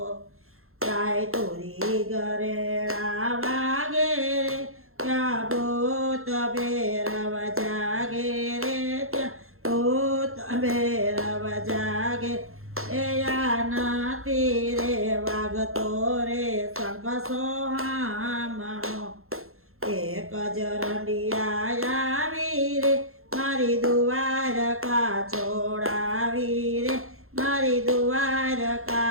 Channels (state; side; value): late; left; 0.62 ms